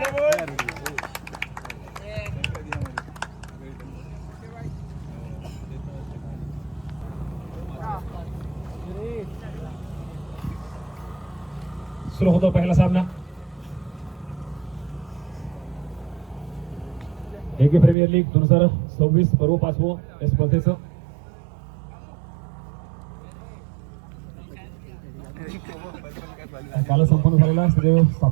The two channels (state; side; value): drops out; left; at 17.9 s